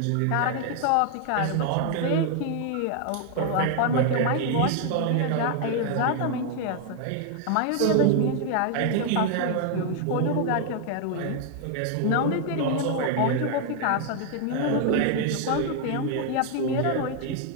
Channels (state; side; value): different; both; correlation 0.00